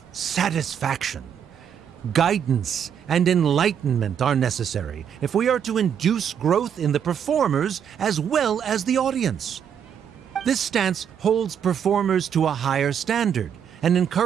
satisfaction. Guidance and enlightenment are necessary if we are to induce growth in the performers as well as the audience. This stance holds performers to a higher standard and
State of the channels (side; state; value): left; quieter; 8.3 dB